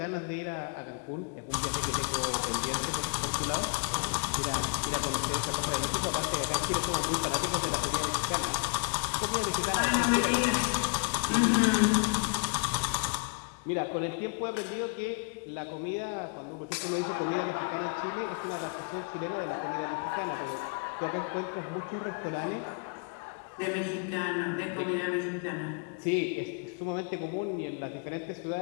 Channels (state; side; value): quieter; right; 35.7 dB